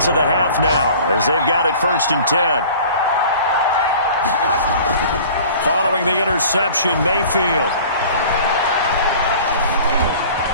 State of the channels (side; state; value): both; inverted; correlation -0.45